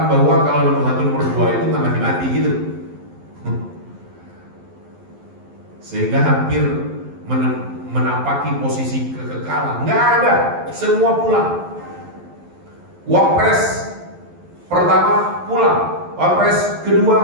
bahwa kalau nomor 1 nomor 2 itu nggak mati-mati gitu. Sehingga hampir menapaki posisi kekekalan. Nggak ada, semua pulang. Wapres pertama pulang, wapres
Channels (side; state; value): left; late; 11 ms